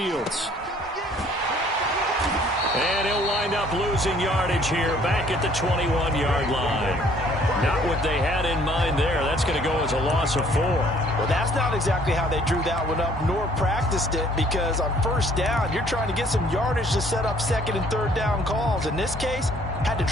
And he'll wind up losing yardage here back at the 21-yard line. Not what they had in mind there. That's going to go as a loss of 4. Well, that's not exactly how they drew that one up nor practiced it, because on first down, you're trying to get some yardage to set up second and third down calls. In this case, had to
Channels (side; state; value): both; normal; correlation 0.59